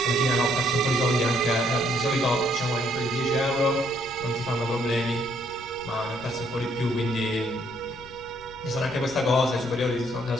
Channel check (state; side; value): noise; left; rumble, 20 dB below the sound